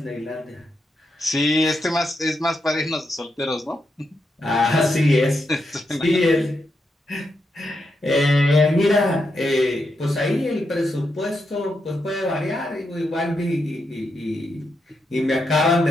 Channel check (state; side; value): normal; both; correlation 0.83